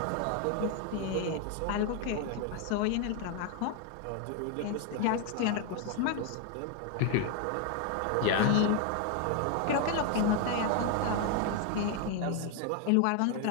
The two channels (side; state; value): both; different; correlation 0.01